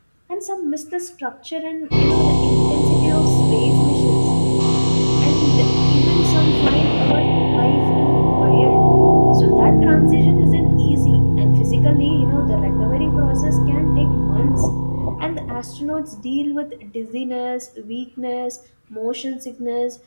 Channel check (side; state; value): both; inverted; correlation -1.00